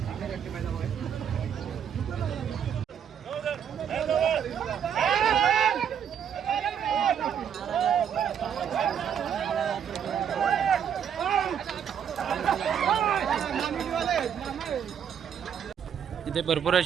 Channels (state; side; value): quieter; left; 8.3 dB